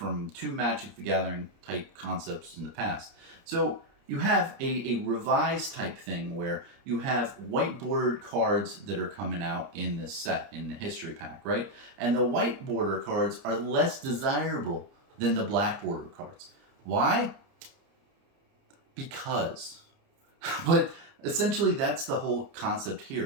two Magic the Gathering type concepts in the past. So you have a revised type thing where you have white bordered cards that are coming out in this set, in the History Pack, right? And the white border cards are less desirable than the black border cards. Why? Because. But essentially that's the whole concept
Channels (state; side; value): late; left; 30 ms